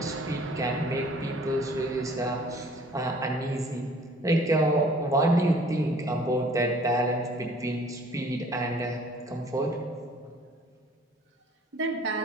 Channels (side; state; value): both; normal; correlation 0.54